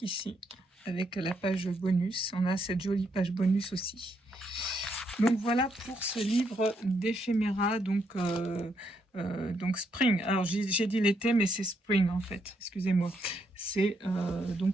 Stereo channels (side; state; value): both; normal; correlation 0.76